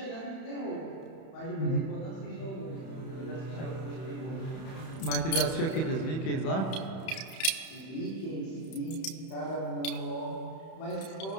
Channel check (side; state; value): right; late; 31 ms